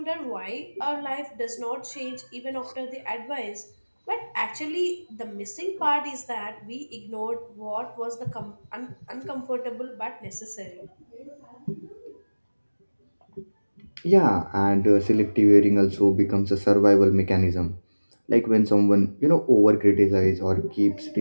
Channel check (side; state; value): both; inverted; correlation -1.00